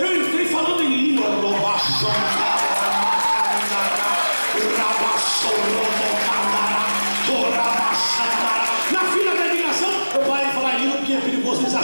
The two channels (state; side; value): inverted; both; correlation -1.00